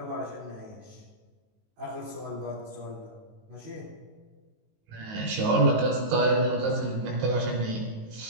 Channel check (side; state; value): left; late; 19 ms